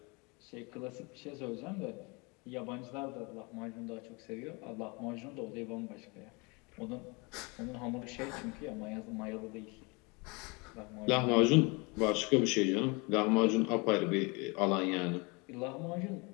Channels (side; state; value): right; quieter; 28.8 dB